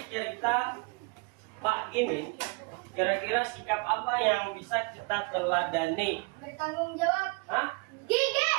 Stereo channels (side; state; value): left; quieter; 30.4 dB